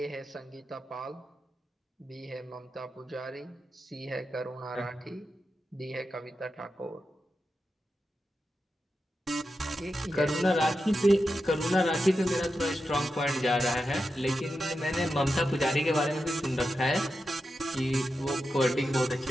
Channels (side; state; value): both; normal; correlation 0.89